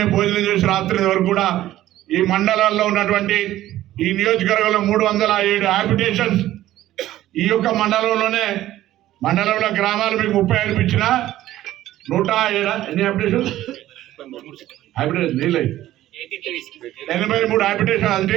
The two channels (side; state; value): left; quieter; 14.2 dB